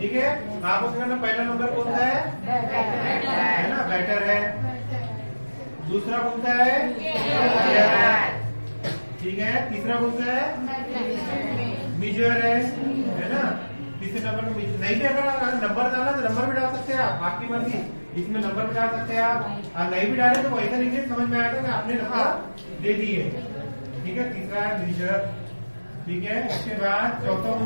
ठीक है, आपको क्या करना? पहला नंबर कौन सा है ना? बेटर है। दूसरा कौन सा है? ठीक है, तीसरा कौन सा है? मीजर है ना? तीसरे नंबर में नहीं भी अगर नंबर डालना तो नंबर भी डाल सकते हैं आप, आपकी मर्जी, इसमें नंबर भी डाल सकते हैं आप, और नहीं भी डाले तो वैसा लिखिए, समझ में आया था कि आपने नंबर दे दी है। ठीक है, तीसरा है मीजर। ठीक है, इसके बाद चौथा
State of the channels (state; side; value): inverted; both; correlation -1.00